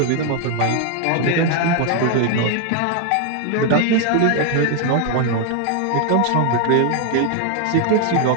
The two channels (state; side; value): different; both; correlation 0.00